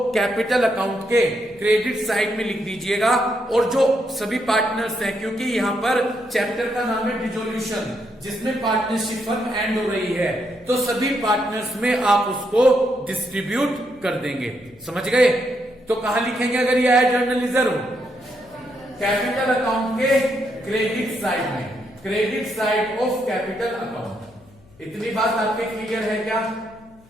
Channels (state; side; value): noise; left; hum, 27 dB below the sound